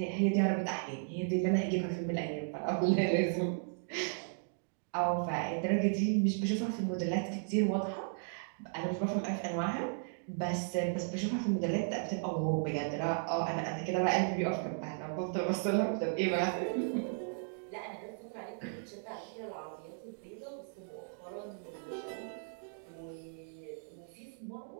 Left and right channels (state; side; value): silent; left; digital silence